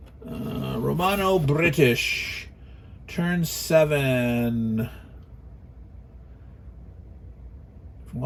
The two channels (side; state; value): both; identical; correlation 1.00